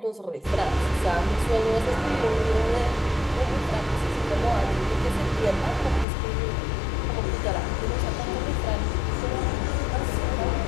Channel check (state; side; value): drops out; right; at 6.1 s